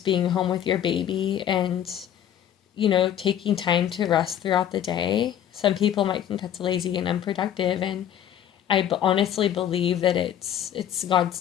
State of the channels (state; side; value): quieter; right; 10.2 dB